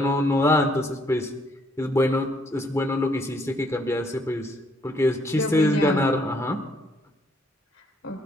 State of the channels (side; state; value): both; normal; correlation 0.68